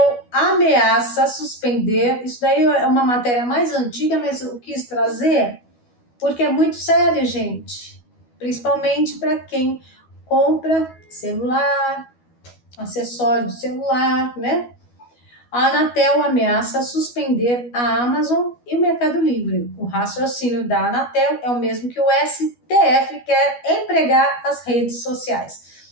ameaça suspender, isso daí é uma matéria mais antiga, mas eu quis trazer porque é muito sério, gente. Principalmente para quem compra celular, acessório de celular, né? A Anatel ameaça suspender a Amazon e o Mercado Livre. O raciocínio da Anatel é o mesmo que o STF quer empregar as redes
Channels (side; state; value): right; late; 12 ms